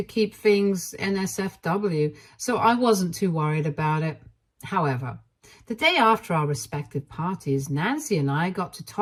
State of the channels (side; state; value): both; identical; correlation 1.00